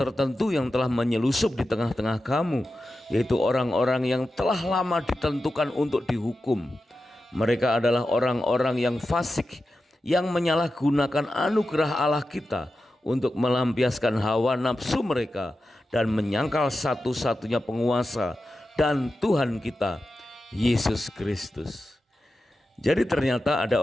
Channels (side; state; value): both; normal; correlation 0.91